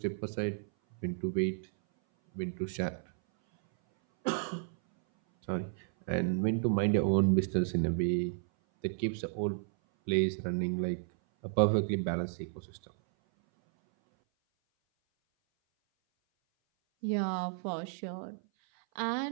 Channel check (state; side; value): silent; left; 56 dB below the other